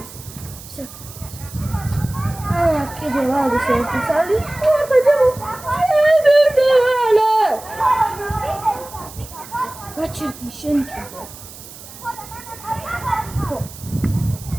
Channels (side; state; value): right; noise; hiss, 16 dB below the sound